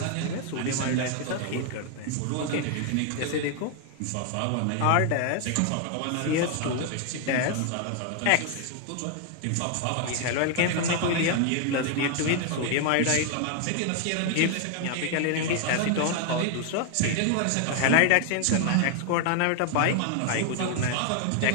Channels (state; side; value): different; both; correlation 0.00